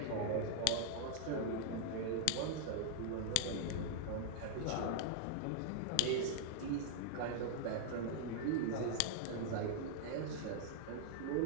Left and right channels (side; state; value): both; different; correlation -0.01